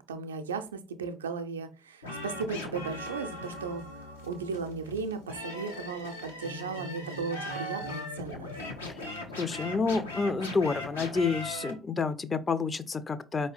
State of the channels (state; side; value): normal; both; correlation 0.42